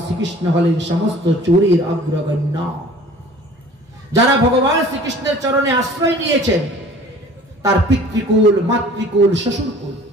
শ্রীকৃষ্ণ হলেন সমস্ত চোরের অগ্রগণ্য। যারা ভগবান শ্রীকৃষ্ণের চরণে আশ্রয় নিয়েছেন তার পিতৃকুল, মাতৃকুল, শ্বশুরকুল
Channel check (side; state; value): both; normal; correlation 0.48